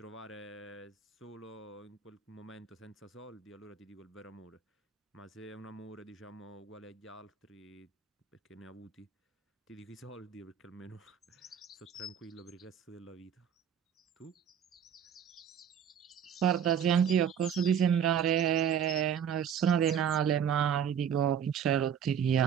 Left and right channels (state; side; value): quieter; left; 8.3 dB